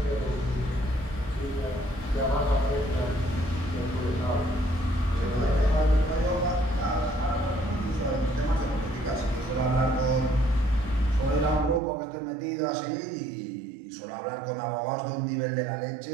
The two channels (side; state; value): left; drops out; at 11.8 s